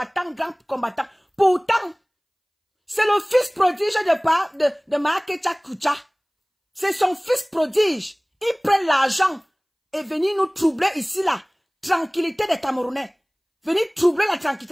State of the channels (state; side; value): identical; both; correlation 1.00